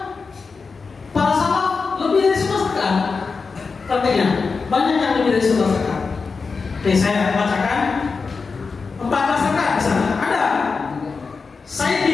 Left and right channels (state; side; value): quieter; right; 4.7 dB